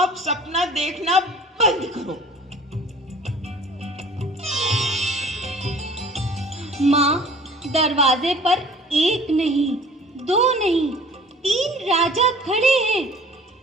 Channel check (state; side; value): normal; both; correlation 0.47